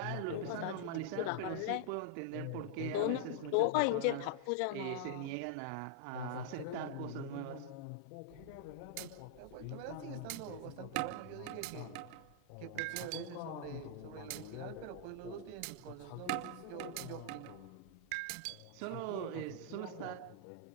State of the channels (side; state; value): both; different; correlation -0.01